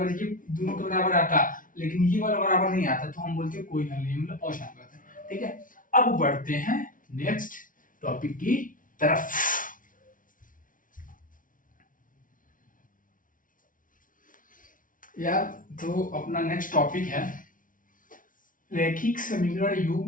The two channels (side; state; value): right; late; 0.38 ms